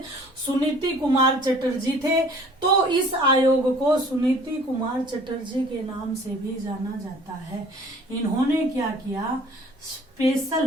सुनीति कुमार चटर्जी थे। तो इस आयोग को सुनीति कुमार चटर्जी के नाम से भी जाना जाता है। इन्होंने क्या किया?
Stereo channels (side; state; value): both; normal; correlation 0.52